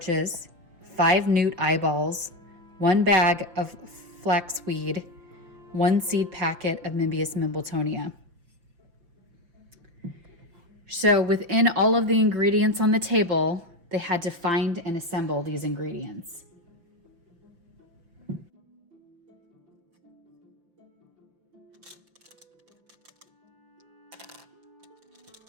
5 newt eyeballs, 1 bag of flaxweed, 1 seed packet of Mimbius mimbletonia. So within all of the ingredients on the table, they had to find and assemble these ingredients.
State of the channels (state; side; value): late; left; 5.8 ms